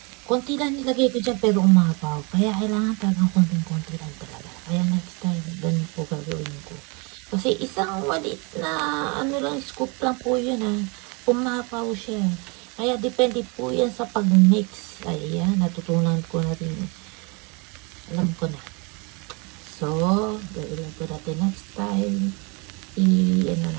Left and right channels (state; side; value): quieter; left; 30.8 dB